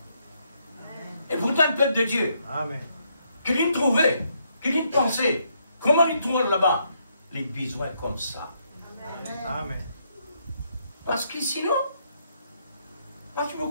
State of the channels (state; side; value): inverted; both; correlation -0.74